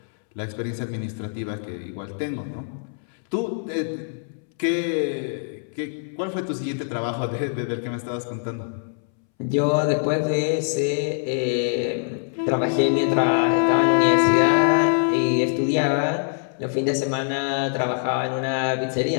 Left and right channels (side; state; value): right; silent; 63 dB below the other